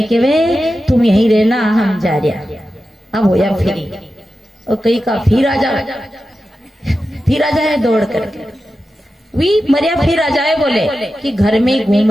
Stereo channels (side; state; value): both; normal; correlation 0.92